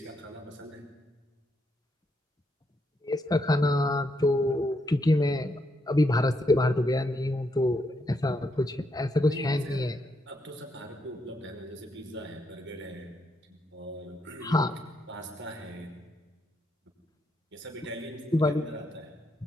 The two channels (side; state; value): both; normal; correlation 0.78